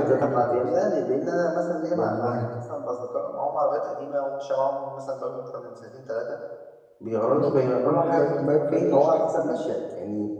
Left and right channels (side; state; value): both; identical; correlation 1.00